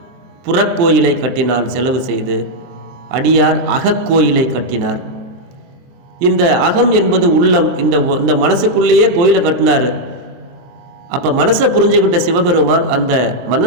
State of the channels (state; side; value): late; left; 23 ms